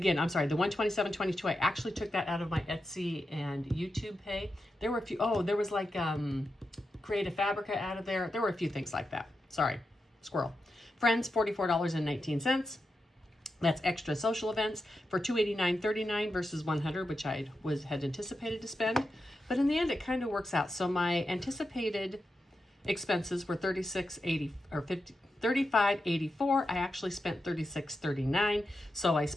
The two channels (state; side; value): normal; both; correlation 0.88